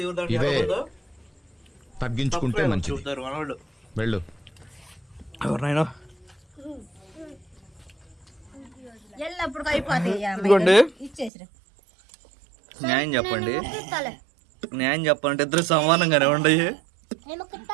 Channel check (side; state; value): left; drops out; at 11.3 s